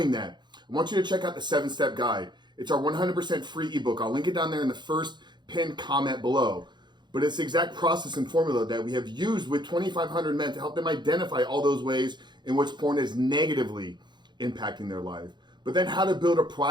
that, I want you to check out the 7-Step Guide. It's our 100% free ebook. I'll link it down there in the first pinned comment below. But it's the exact process and formula that we have used with 2,500 men to help them identify all those ways in which porn is negatively impacting their life. But then how to build a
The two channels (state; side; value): late; left; 0.21 ms